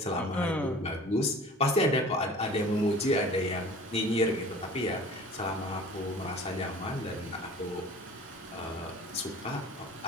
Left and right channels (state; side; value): normal; both; correlation 0.44